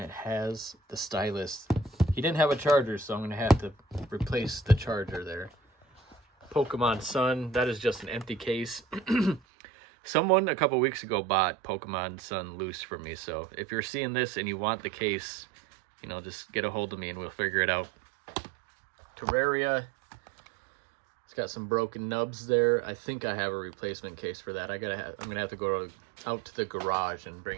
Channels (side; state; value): left; drops out; at 9.4 s